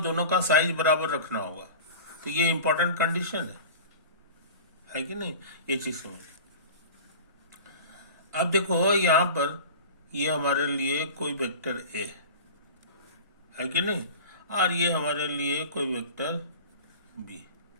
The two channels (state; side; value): inverted; both; correlation -0.36